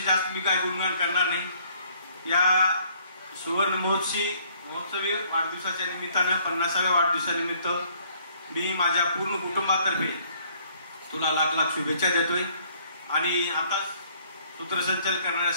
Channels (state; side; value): inverted; both; correlation -0.62